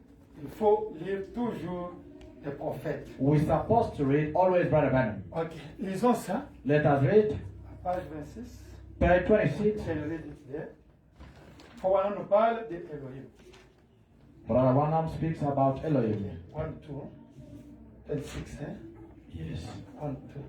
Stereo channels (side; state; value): both; identical; correlation 1.00